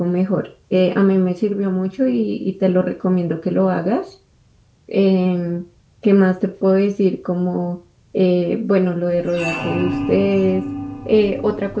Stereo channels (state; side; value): identical; both; correlation 1.00